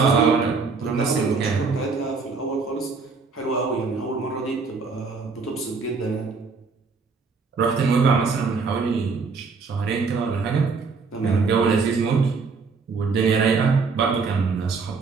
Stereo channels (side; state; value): left; quieter; 4.7 dB